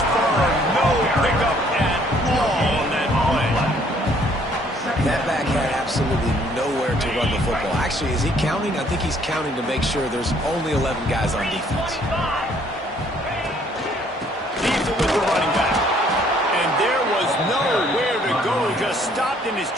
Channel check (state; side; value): normal; both; correlation 0.62